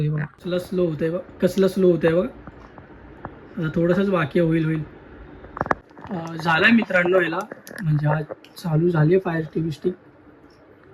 बघा कसलं स्लो होतंय, बघ कसलं स्लो होतंय बघ. आता थोडंसंच बाकी होईल. झालं मित्रांनो याला, म्हणजे हा चालू झाली आहे फायर TV स्टिक.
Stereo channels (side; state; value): both; identical; correlation 1.00